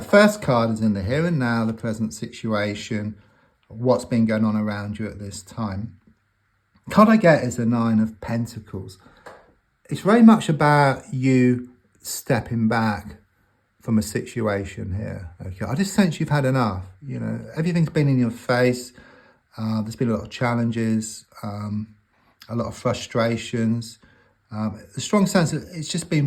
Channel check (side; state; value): both; identical; correlation 1.00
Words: first card is in the here and now, the present situation, what's been going on around you at this time. The card I get is the Nine of Pentacles. It's very much about you stepping back from a situation here. Okay, I just sense you've had enough. You know, everything's been in your face. There's been a lot of challenges, a lot of frustrations. A strong sense that it's just